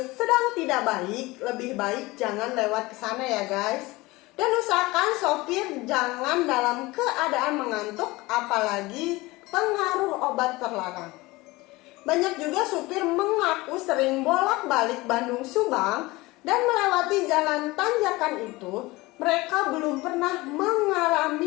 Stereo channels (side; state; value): right; quieter; 21.2 dB